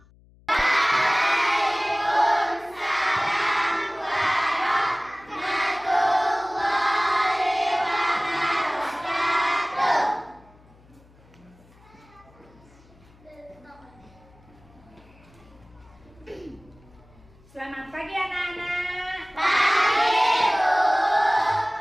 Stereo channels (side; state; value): left; noise; hum, 27 dB below the sound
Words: Selamat pagi anak-anak. Pagi, Bu.